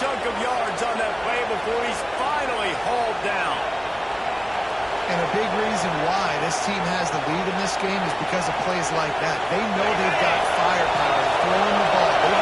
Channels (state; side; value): identical; both; correlation 1.00